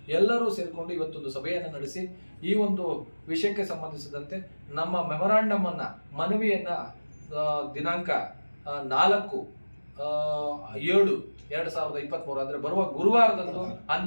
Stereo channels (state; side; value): inverted; both; correlation -1.00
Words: ಎಲ್ಲರೂ ಸೇರಿಕೊಂಡು ಇವತ್ತೊಂದು ಸಭೆಯನ್ನು ನಡೆಸಿ ಈ ಒಂದು ವಿಷಯಕ್ಕೆ ಸಂಬಂಧಿಸಿದಂತೆ ನಮ್ಮ ಮೆಮೊರಾಂಡಮ್ ಅನ್ನ, ಮನವಿಯನ್ನ ದಿನಾಂಕ 4/7/2023 ಅಂದ್ರೆ ಬರುವ ಗುರುವಾರದಂದು